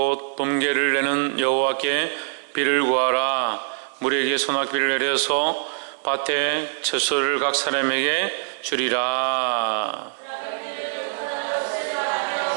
봄개를 내는 여호와께 비를 구하라. 물에게 소낙비를 내려서 밭에 채소를 각 사람에게 주리라.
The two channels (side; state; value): left; silent; digital silence